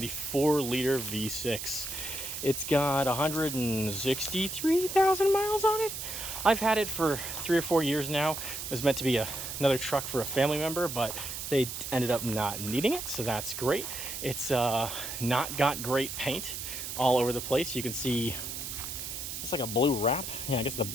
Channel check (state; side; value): noise; right; hiss, 6 dB below the sound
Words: the 4-liter V6. It's got 163,000 miles on it. I've had it for 3 or 4 years now. It was meant to be another truck for a family member, but they ended up not needing it, so that's great. It's not got great paint all over the place. You can see it's like a blue wrap. Yeah, I guess the